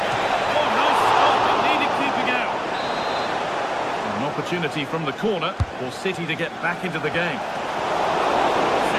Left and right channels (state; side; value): identical; both; correlation 1.00